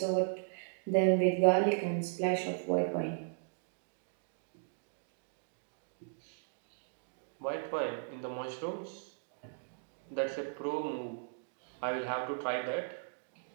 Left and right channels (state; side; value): silent; left; digital silence